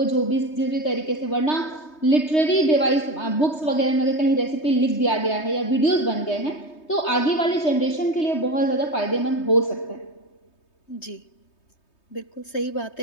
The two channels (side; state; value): right; late; 3.2 ms